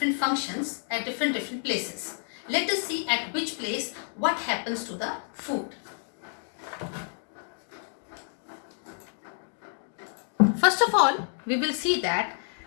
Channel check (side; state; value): right; silent; 59 dB below the other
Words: functions at different places. Let us see at which place what happens to the food. First of all, we will see that